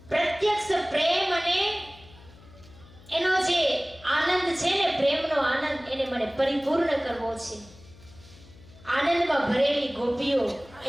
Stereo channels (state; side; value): noise; left; hum, 23 dB below the sound